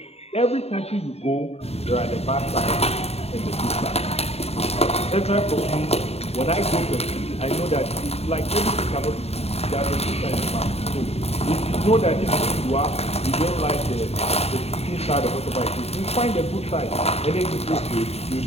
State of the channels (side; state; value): right; late; 0.30 ms